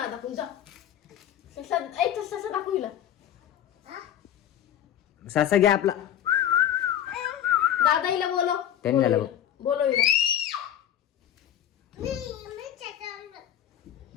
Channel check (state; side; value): quieter; right; 10.6 dB